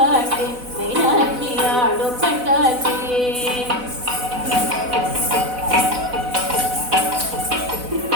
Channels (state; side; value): late; left; 4.0 ms